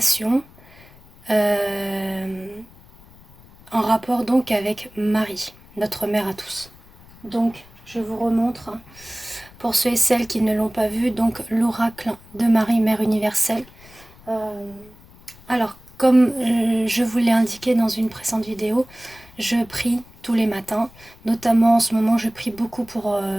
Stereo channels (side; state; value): left; noise; rumble, 24 dB below the sound